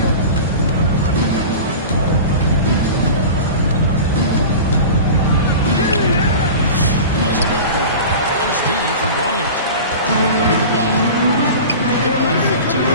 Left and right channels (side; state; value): both; inverted; correlation -0.34